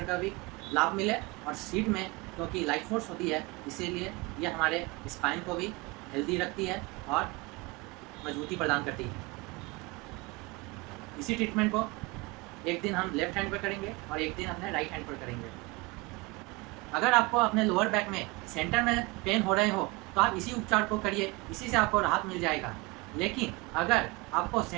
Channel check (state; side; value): quieter; left; 24.9 dB